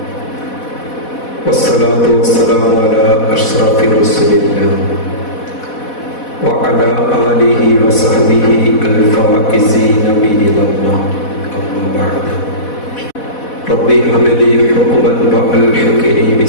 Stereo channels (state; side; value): late; right; 4.1 ms